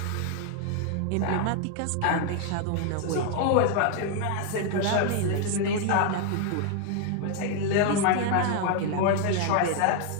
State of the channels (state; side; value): different; both; correlation 0.00